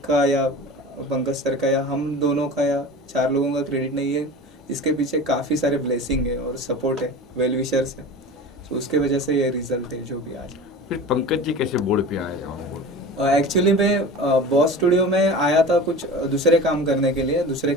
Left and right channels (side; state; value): both; normal; correlation 0.35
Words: का या पंकज सर का या हम दोनों का या 4 लोगों का क्रेडिट नहीं है। इसके पीछे काफ़ी सारे ब्लेसिंग है और सपोर्ट है, वेल विशर्स है। तो उसके वजह से ये रिजल्ट है जो भी आज। फिर पंकज जी कैसे बोर्ड पे आए? एक्चुअली मैं बॉस स्टूडियो में आया था कुछ दूसरे काम करने के लिए दूसरे